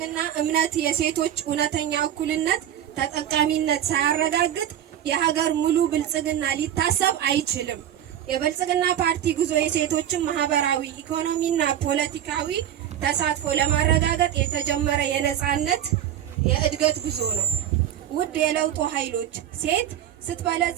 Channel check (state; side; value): quieter; left; 10.7 dB